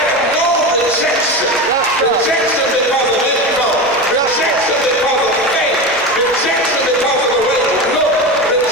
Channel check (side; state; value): both; normal; correlation 0.23